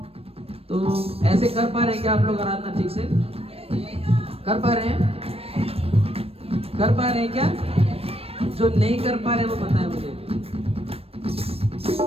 तो ऐसे कर पा रहे हैं क्या आप लोग आराधना ठीक से? कर पा रहे हैं? कर पा रहे हैं क्या? जो नहीं कर पा रहे वो बताएं मुझे।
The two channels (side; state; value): left; late; 0.28 ms